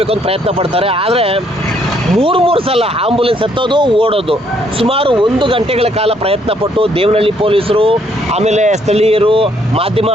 ಅಂತ ಪ್ರಯತ್ನ ಪಡ್ತಾರೆ. ಆದರೆ ಮೂರು ಸಲ ಆಂಬುಲೆನ್ಸ್ ಹತ್ತೋದು, ಓಡೋದು. ಸುಮಾರು 1 ಗಂಟೆಗಳ ಕಾಲ ಪ್ರಯತ್ನ ಪಟ್ಟು ದೇವನಹಳ್ಳಿ ಪೊಲೀಸರು, ಆಮೇಲೆ ಸ್ಥಳೀಯರು, ಮಾಧ್ಯಮ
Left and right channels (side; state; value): both; normal; correlation 0.68